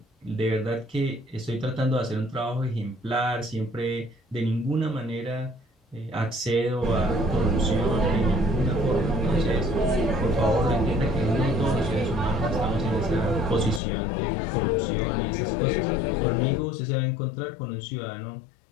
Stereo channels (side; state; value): right; drops out; at 13.8 s